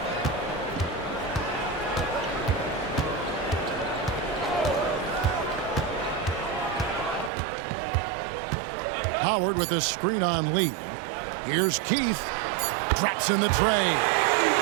Howard with a screen on Lee. Here's Keith. Drops in the tray.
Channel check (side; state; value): left; drops out; at 7.3 s